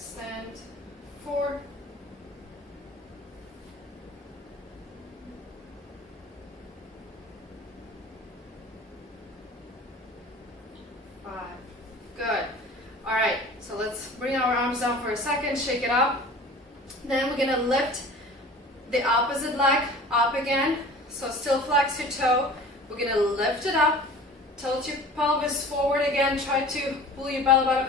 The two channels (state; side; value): normal; both; correlation 0.42